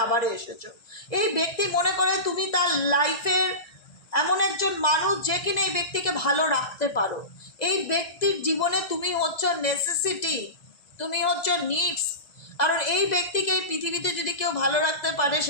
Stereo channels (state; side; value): late; right; 2.0 ms